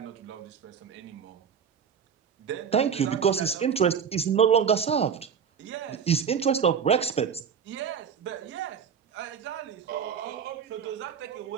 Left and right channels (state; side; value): quieter; left; 7.2 dB